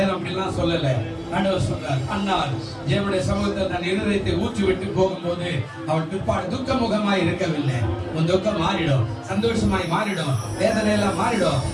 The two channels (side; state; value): both; identical; correlation 1.00